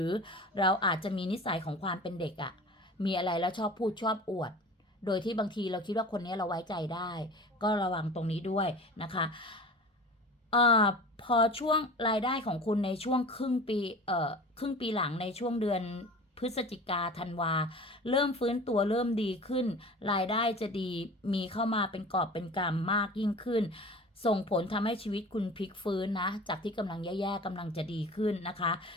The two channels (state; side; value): normal; both; correlation 0.38